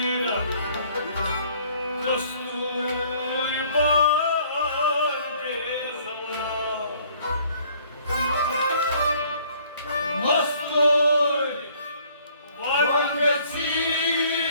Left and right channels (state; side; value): inverted; both; correlation -0.59